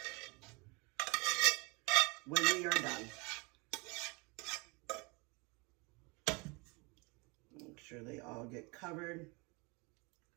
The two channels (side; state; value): left; quieter; 28.9 dB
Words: when we are done. Make sure they all get covered.